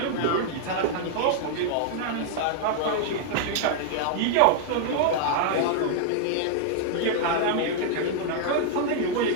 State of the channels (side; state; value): both; different; correlation 0.00